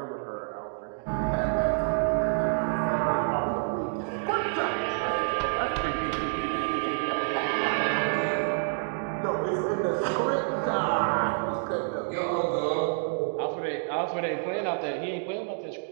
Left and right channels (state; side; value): silent; left; digital silence